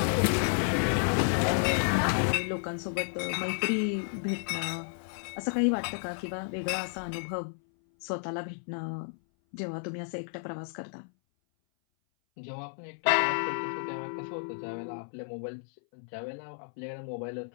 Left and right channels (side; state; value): right; silent; 57 dB below the other